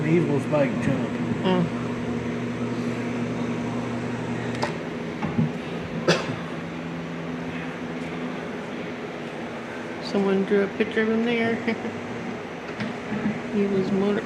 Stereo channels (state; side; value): identical; both; correlation 1.00